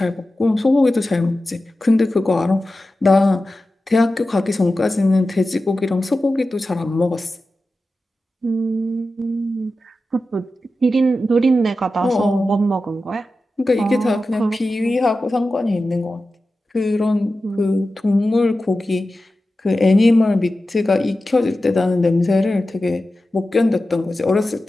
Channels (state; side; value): normal; both; correlation 0.93